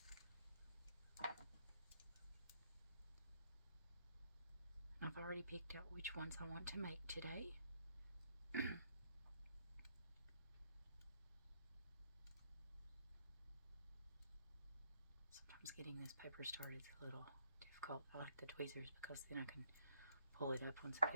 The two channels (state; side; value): inverted; both; correlation -0.70